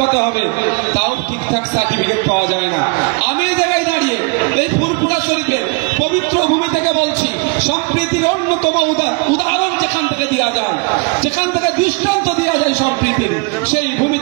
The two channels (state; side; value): quieter; left; 30.9 dB